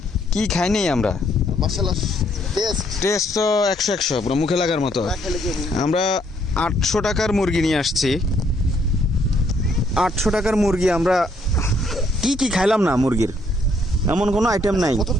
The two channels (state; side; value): normal; both; correlation 0.69